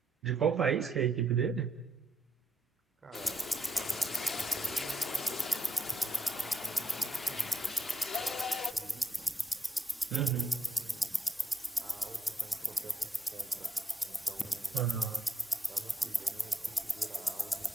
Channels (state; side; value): normal; both; correlation 0.82